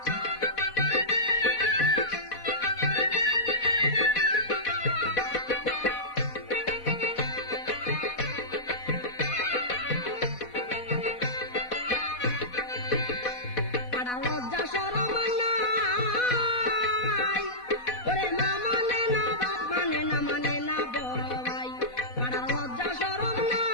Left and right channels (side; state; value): right; late; 4.1 ms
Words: পাড়ার লজ্জা শরম নাই, ওরে মা মানে না বাপ মানে না, মানে না বড় ভাই। পাড়ার লজ্জা শরম